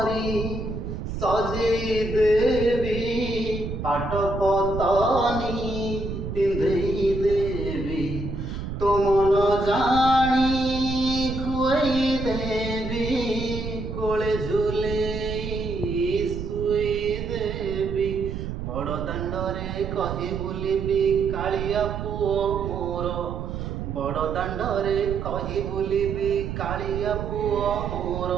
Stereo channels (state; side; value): noise; right; rumble, 5 dB below the sound